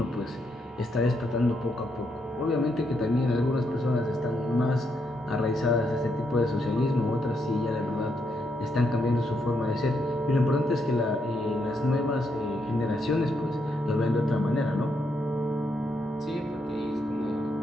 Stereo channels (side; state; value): both; normal; correlation 0.79